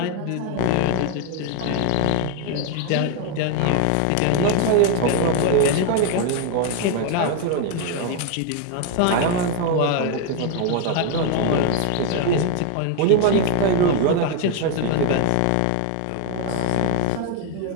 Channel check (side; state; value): both; different; correlation 0.00